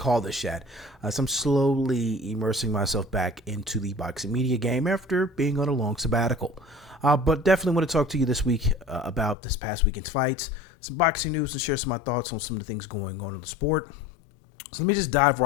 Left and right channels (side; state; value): right; drops out; at 9.3 s